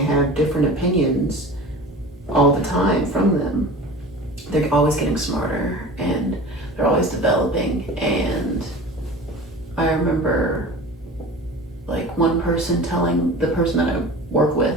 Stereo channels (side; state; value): both; normal; correlation 0.37